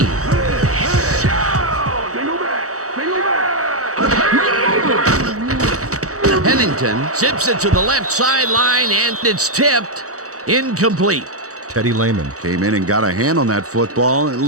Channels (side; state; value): left; late; 0.65 ms